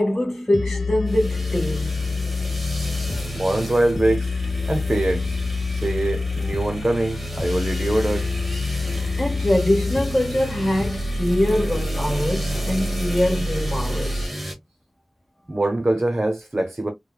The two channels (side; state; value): both; normal; correlation 0.95